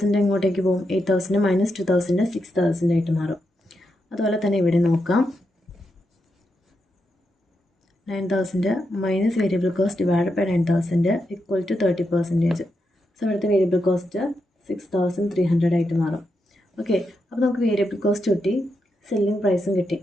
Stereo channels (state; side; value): normal; both; correlation 0.84